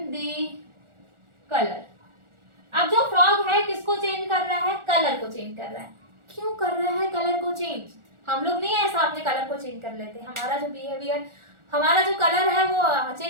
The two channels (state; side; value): late; left; 1.4 ms